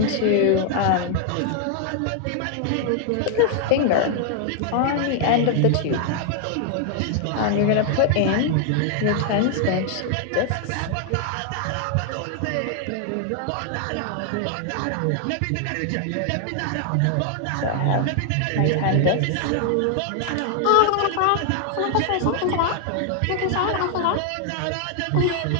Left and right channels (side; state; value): both; different; correlation 0.00